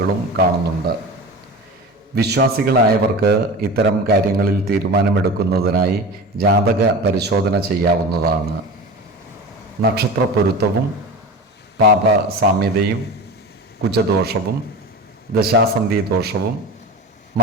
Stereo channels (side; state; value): both; normal; correlation 0.31